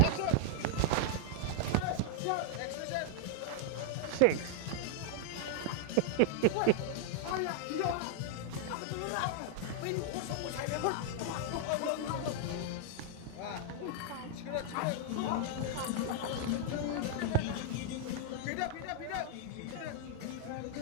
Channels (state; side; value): different; both; correlation 0.00